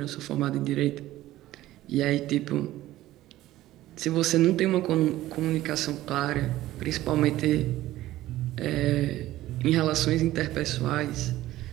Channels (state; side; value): quieter; left; 15.5 dB